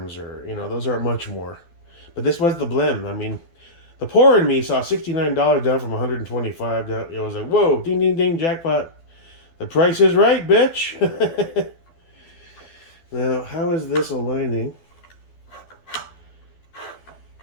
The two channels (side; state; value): right; late; 12 ms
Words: or, those aren't much more. But this was the blim. I mean, the poor in me saw $69 down from $125 down. It was like, whoa, ding, ding, ding, jackpot. The price is right, bitch. Now, how is this aligning?